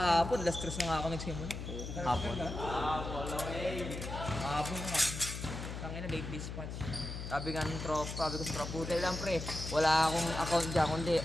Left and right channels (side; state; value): left; noise; hum, 7 dB below the sound